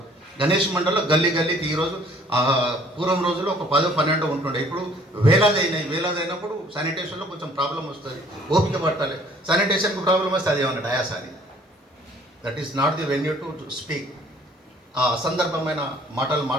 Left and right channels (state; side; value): normal; both; correlation 0.57